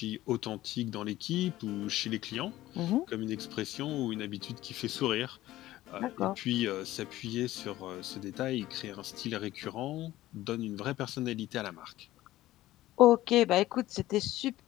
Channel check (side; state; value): right; quieter; 15.7 dB